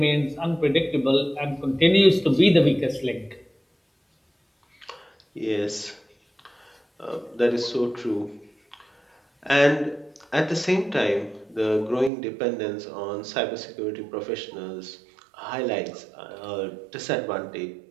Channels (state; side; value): drops out; left; at 12.1 s